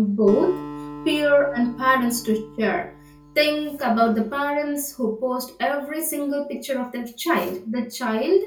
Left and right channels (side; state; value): both; identical; correlation 1.00